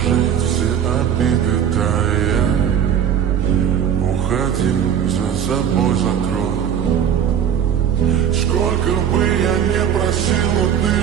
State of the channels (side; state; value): left; quieter; 8.9 dB